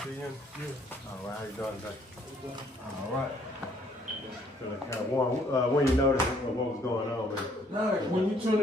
unit? Yeah. All right, how you doing today? All right. So like kind of warm. When you notice what was going on with it? No, when you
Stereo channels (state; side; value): normal; both; correlation 0.64